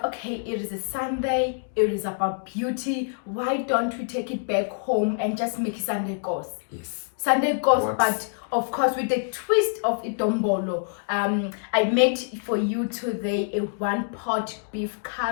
okay, it is a Sunday. It is about beauty. Why don't we take it back home and just make Sunday goes? Yes. Sunday goes, but of course with the twist of itombolo. I made for you today a one-pot beef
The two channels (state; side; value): silent; right; digital silence